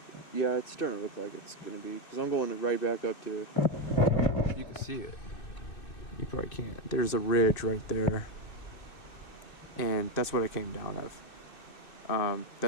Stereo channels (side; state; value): right; late; 2.6 ms